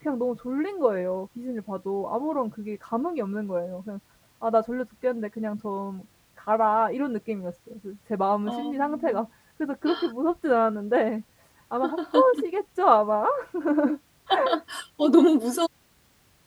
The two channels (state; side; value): identical; both; correlation 1.00